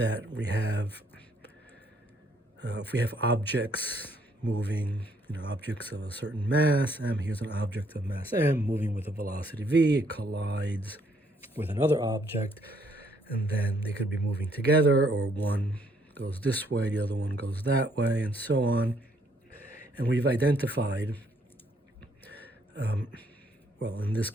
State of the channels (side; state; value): both; normal; correlation 0.68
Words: we have, if we have objects moving, objects of a certain mass, m, here's an object of mass m moving with a velocity v, it collides with another object, and then they could be moving together, or one goes this way, the other one goes that way, and so on. And we've identified, well, in this